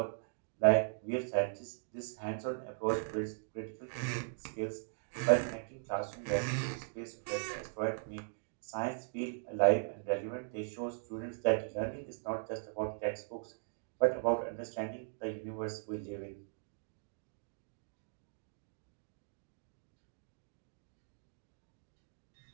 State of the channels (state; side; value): silent; left; digital silence